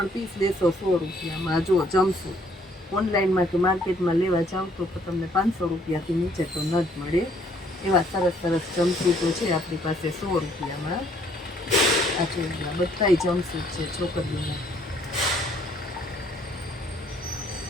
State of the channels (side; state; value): both; normal; correlation 0.64